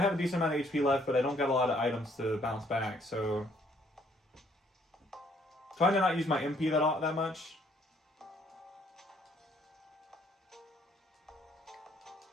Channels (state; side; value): normal; both; correlation 0.65